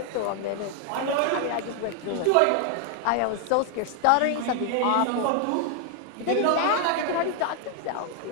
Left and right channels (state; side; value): different; both; correlation 0.00